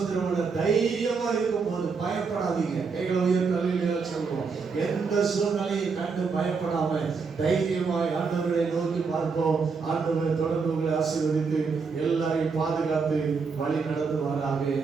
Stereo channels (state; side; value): quieter; left; 5.1 dB